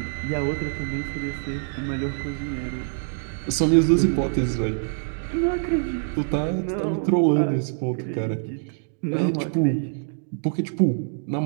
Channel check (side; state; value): left; silent; digital silence